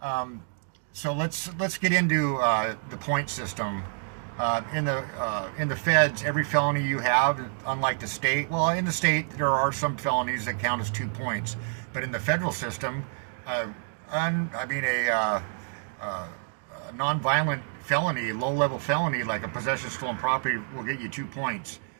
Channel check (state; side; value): silent; left; digital silence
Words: So let's get into the point system. In the feds, every felony you have, unlike the state, well, in the state there are some felonies that count as 2 points, but in the federal system, a non-violent felony, low-level felony like a possession of stolen property will get you 2 points.